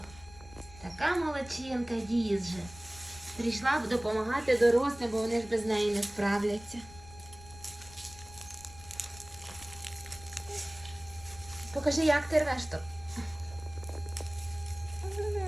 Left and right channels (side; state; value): left; noise; rumble, 19 dB below the sound